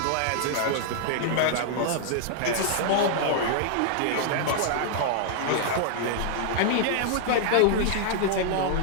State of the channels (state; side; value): different; both; correlation -0.01